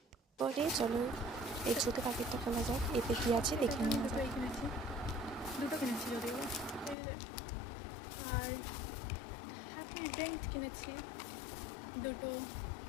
পরে চলো এই ছোটো প্যাকেটটা খোলা যাক, এতে কী আছে দেখে নেওয়া যাক। দুটো কিনেছি যদিও, আর হ্যাপি ড্রিঙ্ক কিনেছি, দুটো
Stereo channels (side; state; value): right; drops out; at 7.0 s